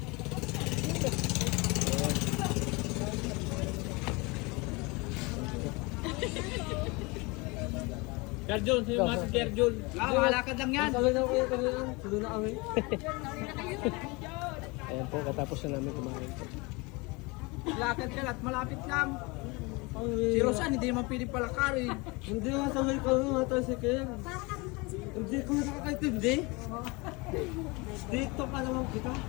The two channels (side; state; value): right; quieter; 26.4 dB